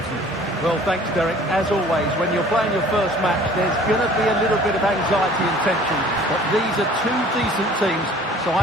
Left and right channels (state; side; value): normal; both; correlation 0.50